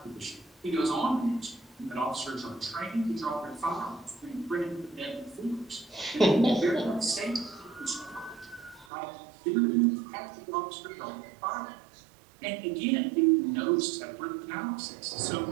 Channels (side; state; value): left; drops out; at 8.8 s